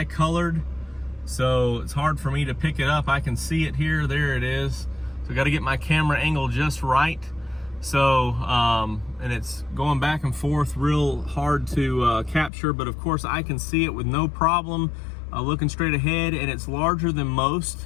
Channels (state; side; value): drops out; right; at 12.5 s